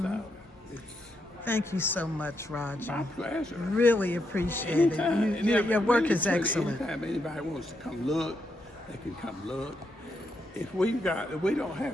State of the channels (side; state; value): both; normal; correlation 0.80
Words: So it's Thank you so much, Roger. my pleasure. Really appreciate it. Your work is excellent. Anytime anybody wants to come look, they can come look. If we don't have